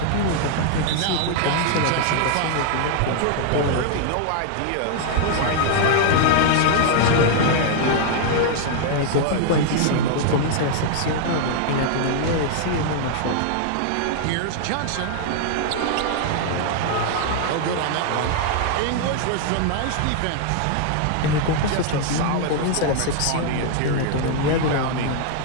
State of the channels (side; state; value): both; different; correlation 0.00